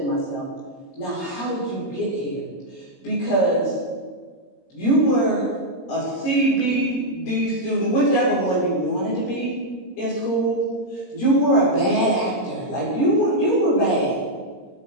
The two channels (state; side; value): late; right; 22 ms